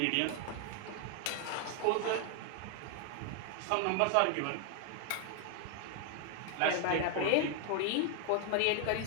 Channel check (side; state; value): both; different; correlation 0.00